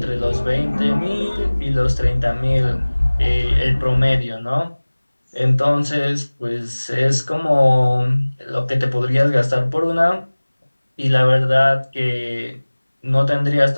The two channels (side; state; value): both; inverted; correlation -1.00